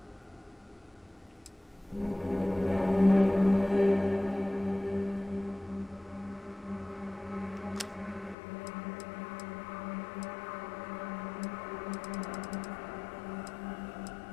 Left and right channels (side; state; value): right; drops out; at 8.3 s